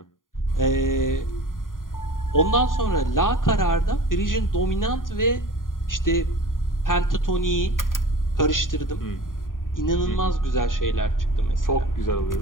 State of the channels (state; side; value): late; right; 0.89 ms